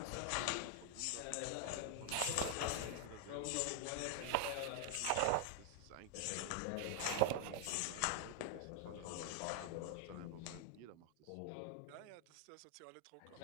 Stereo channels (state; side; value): different; both; correlation 0.00